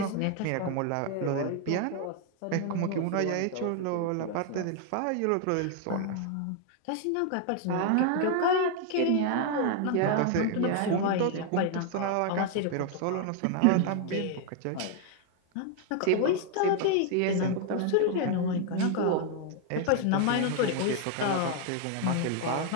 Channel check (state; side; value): different; both; correlation 0.00